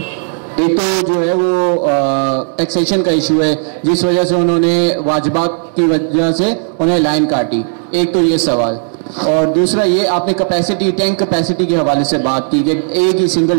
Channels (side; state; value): left; silent; 58 dB below the other